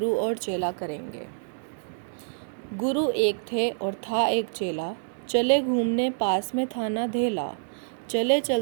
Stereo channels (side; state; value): left; silent; digital silence